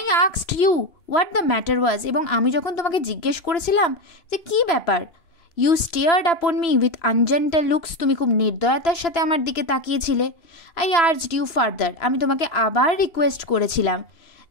asked you what the matter was, এবং আমি যখন তোমাকে জিজ্ঞেস করেছিলাম যে কী ব্যাপার, you stared upon me with ungentle looks, তুমি খুব নির্দয়তার সাথে আমার দিকে তাকিয়েছিলে। আই আর্জড ইউ ফার্দার, আমি তোমাকে আবার রিকোয়েস্ট করেছিলাম।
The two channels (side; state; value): right; late; 2.9 ms